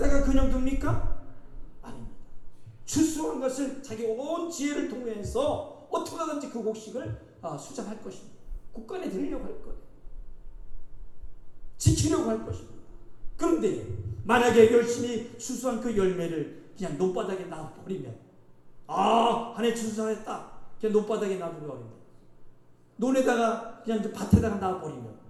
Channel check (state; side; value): identical; both; correlation 1.00